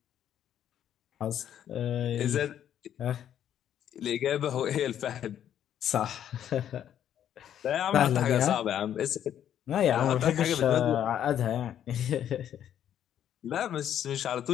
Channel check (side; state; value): right; quieter; 10.2 dB